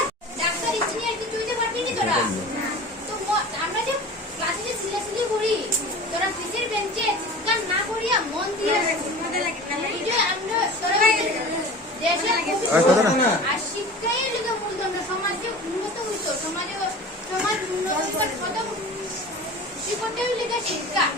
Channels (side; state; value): both; normal; correlation 0.38